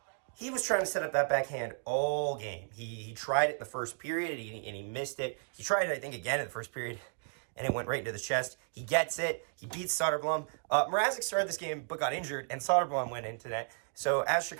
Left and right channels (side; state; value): left; silent; 55 dB below the other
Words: He was trying to set up that backhand all game. He tried it in the first period, and he missed it. He tried it, I think, again in the first period, and it went right into the chest. He gets it. He beats Soderblom. Mrazek started this game but got injured, and Soderblom went into that. So as